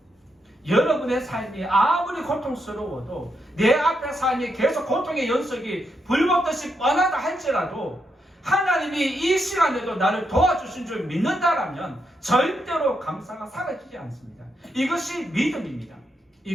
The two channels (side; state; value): both; normal; correlation 0.81